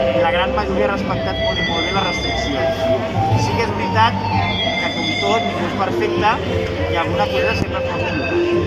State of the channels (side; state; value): both; identical; correlation 1.00